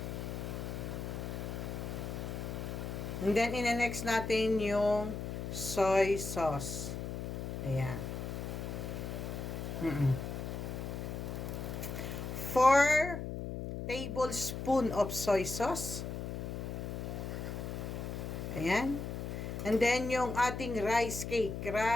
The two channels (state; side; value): noise; left; hum, 5 dB below the sound